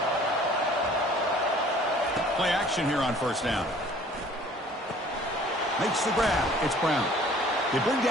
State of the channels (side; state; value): both; normal; correlation 0.52